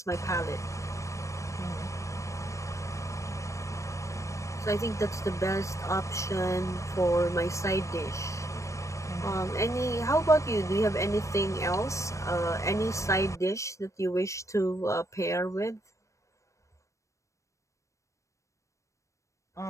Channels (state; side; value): late; right; 0.15 ms